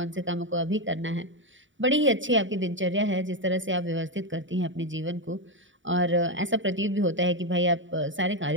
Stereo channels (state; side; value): late; left; 0.56 ms